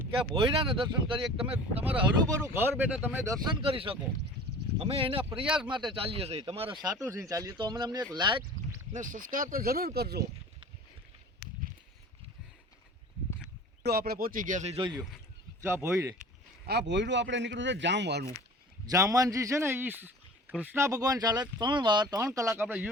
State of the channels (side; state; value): both; normal; correlation 0.41